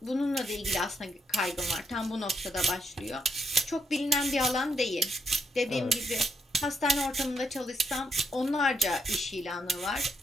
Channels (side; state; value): both; normal; correlation 0.77